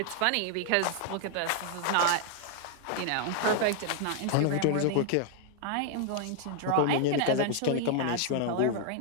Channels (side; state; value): both; different; correlation 0.00